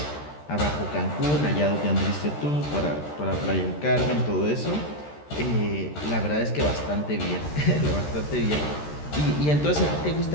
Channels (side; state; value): right; late; 13 ms